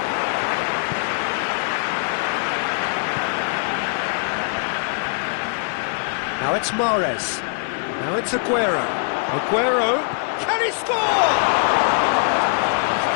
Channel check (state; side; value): silent; right; digital silence